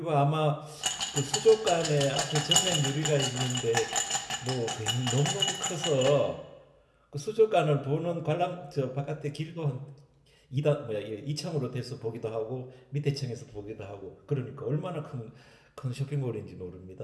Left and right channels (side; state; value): both; identical; correlation 1.00